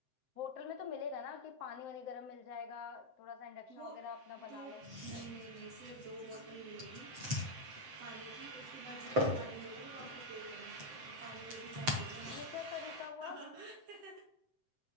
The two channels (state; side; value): late; left; 7.7 ms